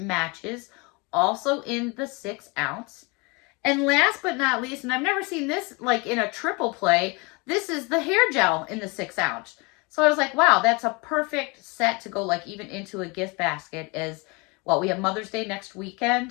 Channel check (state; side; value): quieter; right; 28.3 dB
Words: also in the 6 ounce. And last but not least, and I've never seen this like in a triple play, this is the hair gel in the 6 ounce. So I was like, wow, that's a perfect set to go like even into a gift basket. As well, we have Mother's Day next